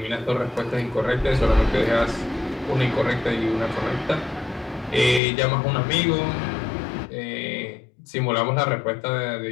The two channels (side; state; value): right; drops out; at 5.2 s